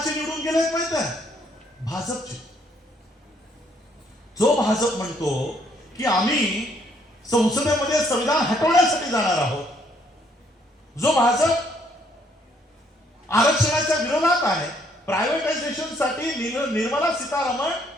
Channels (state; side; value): normal; both; correlation 0.68